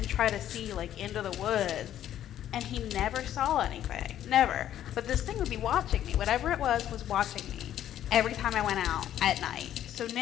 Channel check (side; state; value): right; quieter; 11.4 dB